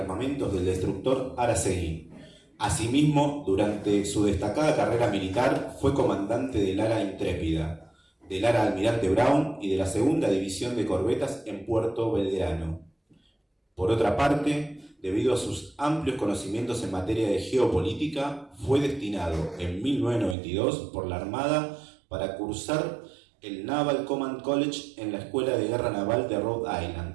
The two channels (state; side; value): drops out; left; at 20.4 s